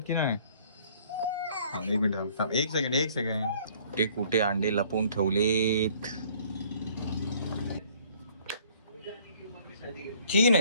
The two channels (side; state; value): both; inverted; correlation -0.57